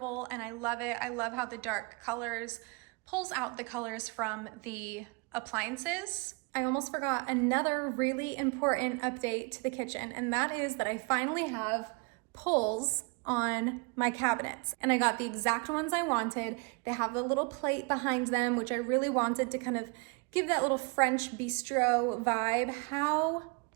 and I love it. I love how the dark colors pulls out the colors from the appliances. I almost forgot another really important update to the kitchen, and that is that I finally have pulls on my cabinets, and I got the exact ones I wanted. They have a little plate behind them, which I really wanted to kind of give that little French bistro vibe. How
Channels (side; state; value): left; quieter; 31.1 dB